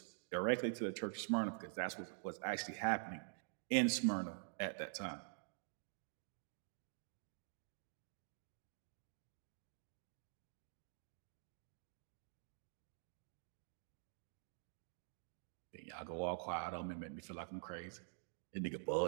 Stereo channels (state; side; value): silent; left; digital silence